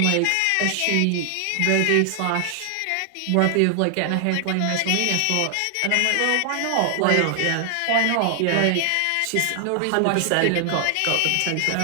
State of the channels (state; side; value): different; both; correlation 0.00